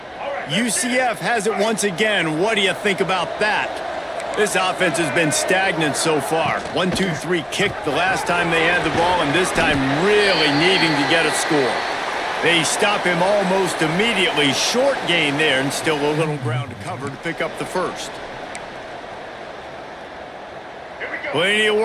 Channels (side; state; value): both; identical; correlation 1.00